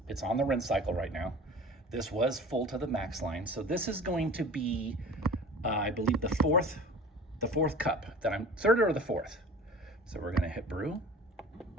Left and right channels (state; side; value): normal; both; correlation 0.40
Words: on the rinse cycle right now. This was full to the max line. So this is going to be, I believe the fourth cup that I'm, third or the fourth. So we're gonna hit brew.